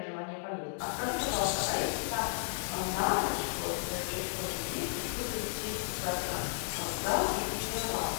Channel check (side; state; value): right; silent; digital silence